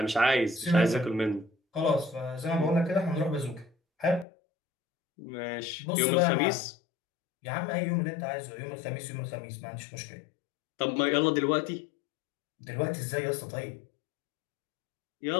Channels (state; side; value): drops out; right; at 4.2 s